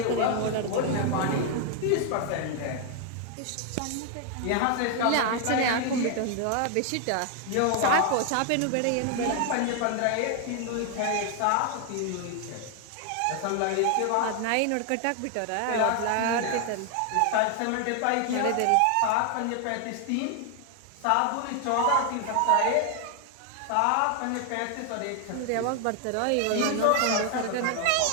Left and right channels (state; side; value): different; both; correlation 0.00